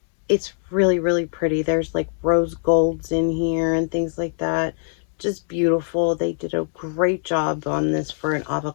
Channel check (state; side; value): silent; right; digital silence